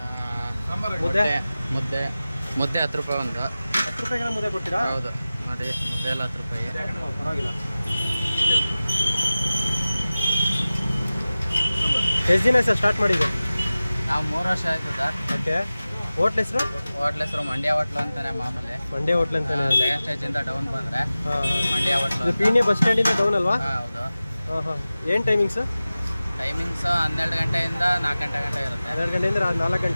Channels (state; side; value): inverted; both; correlation -0.96